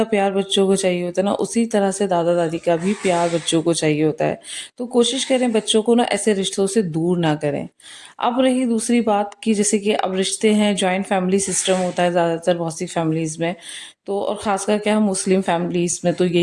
प्यार बच्चों को चाहिए होता है ना, उसी तरह से दादा-दादी का भी प्यार बच्चों को चाहिए होता है। तो कोशिश करें बच्चों को ना ऐसे रिश्तों से दूर ना करें। अब रही दूसरी बात कि जैसे कि अब रिश्ते हैं, जॉइंट फैमिली सिस्टम होता है ज़्यादातर बहुत सी फैमिलीज़ में। तो और ख़ासकर क्या, हम मुस्लिम फैमिलीज़ में तो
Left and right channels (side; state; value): both; identical; correlation 1.00